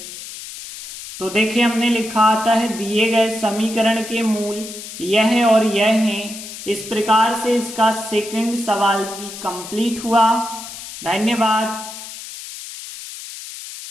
तो देखिए हमने लिखा आता है दिए गए समीकरण के मूल यह और यह हैं। इस प्रकार से इसका सेकंड सवाल भी कंप्लीट हुआ। धन्यवाद।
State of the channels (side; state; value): left; noise; hiss, 12 dB below the sound